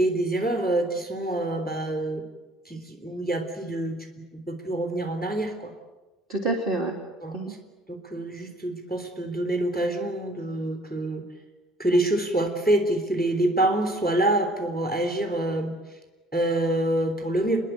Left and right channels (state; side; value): normal; both; correlation 0.58